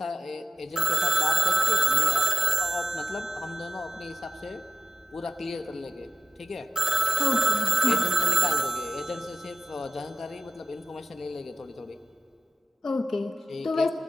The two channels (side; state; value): both; normal; correlation 0.84